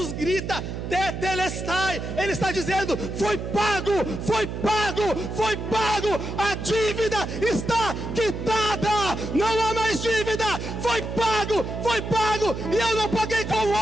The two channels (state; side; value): noise; right; hum, 6 dB below the sound